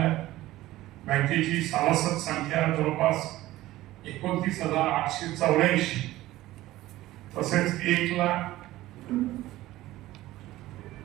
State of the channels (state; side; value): quieter; left; 16.3 dB